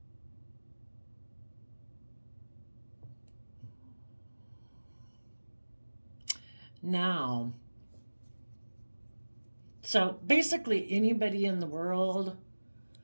Now, so basically, anybody in the world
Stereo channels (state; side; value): inverted; both; correlation -1.00